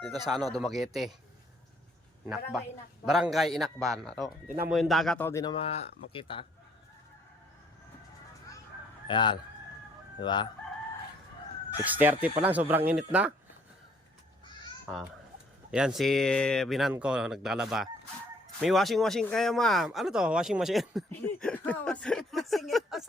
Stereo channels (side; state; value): both; normal; correlation 0.63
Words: dito sa ano, Dumaguete. Barangay Inakban. Tingnan mo yung dagat, di na makita. Ayan. Di ba? 6:30 pa lang, sobrang init na. Yan si binan ko, naglalaba. May washing kayo, ma'am. Ano to? Washing machine? Washing ito